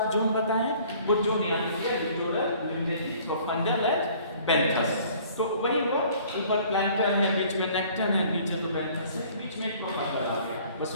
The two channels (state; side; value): inverted; both; correlation -0.54